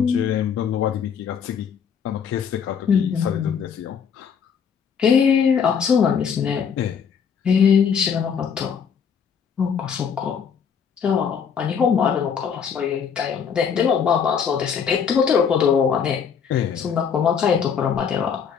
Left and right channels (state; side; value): quieter; right; 7.1 dB